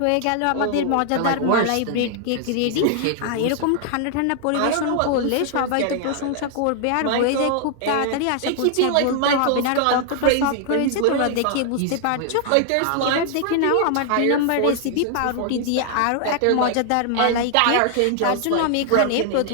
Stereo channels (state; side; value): different; both; correlation 0.00